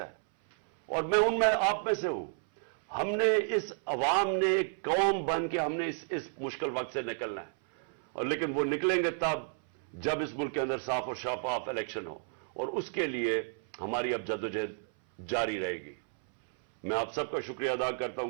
اور میں آپ میں سے ہوں. ہم نے اس عوام نے ایک قوم بن کے ہم نے اس مشکل وقت سے نکلنا ہے. اور لیکن وہ نکلیں گے تب جب اس ملک کے اندر صاف اور شفاف الیکشن ہو, اور اس کے لیے ہماری اب جدوجہد جاری رہے گی. میں آپ سب کا شکریہ ادا کرتا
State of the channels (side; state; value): left; silent; 57 dB below the other